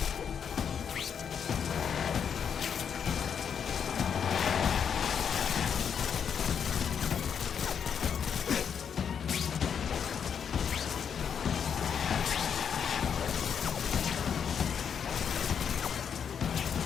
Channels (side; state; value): right; quieter; 7.4 dB